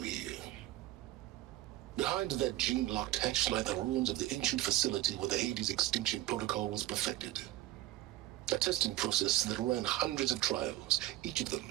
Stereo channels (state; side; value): quieter; left; 15.3 dB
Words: here? Behind that gene-locked hatch lie the ruins of the ancient facility where the Hades extinction protocol was perfected. A testing process that ran hundreds of trials, each of them